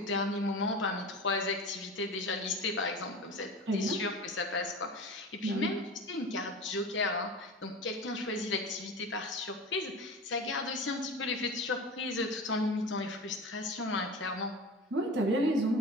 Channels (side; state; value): both; normal; correlation 0.32